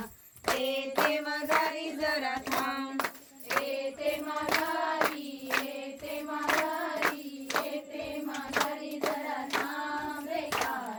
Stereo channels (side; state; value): both; identical; correlation 1.00